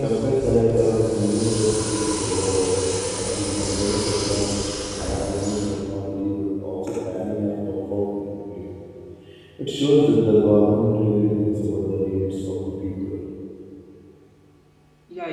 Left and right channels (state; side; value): identical; both; correlation 1.00